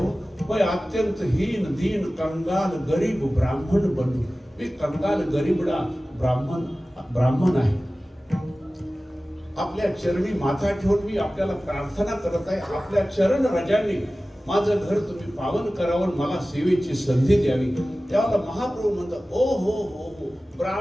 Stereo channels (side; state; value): both; normal; correlation 0.96